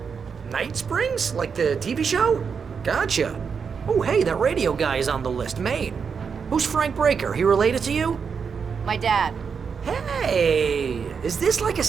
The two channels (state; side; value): quieter; left; 6.1 dB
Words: Night Springs? Like the TV show? Gotcha. Oh, hey, that radio guy is on the list, Maine. Who's Frank Breaker? He related to you? My dad. Hey, is this like a